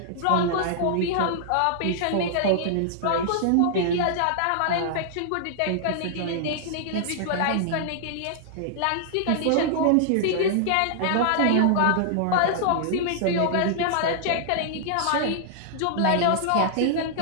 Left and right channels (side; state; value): both; different; correlation -0.01